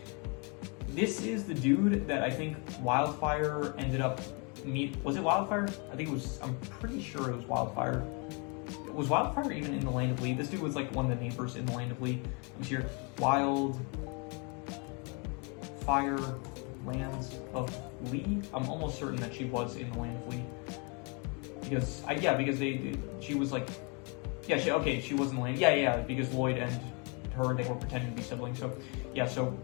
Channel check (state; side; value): quieter; right; 33.8 dB